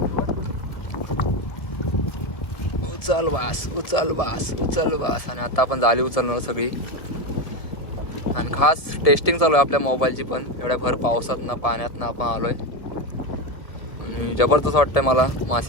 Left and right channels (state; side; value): late; right; 1.7 ms